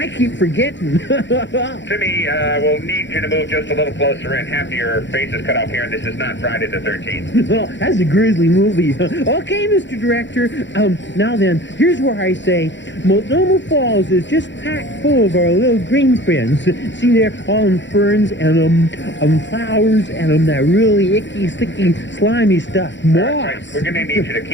keep forgetting. Timmy, we'll need you to move just a little closer in. Half of your face is cut off here, and this is not Friday the 13th. Oh, that's a grisly movie. Okay, Mr. Director. Now then, here's where I say Multnomah Falls is just packed full of our little green friends. See there, all them ferns and flowers and that really icky, sticky, slimy stuff. Moss. Right. We're going to need you to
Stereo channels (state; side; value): late; right; 0.53 ms